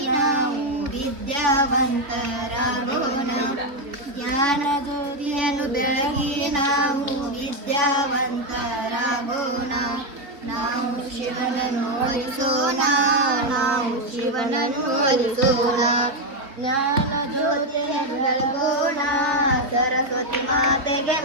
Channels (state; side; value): late; left; 3.6 ms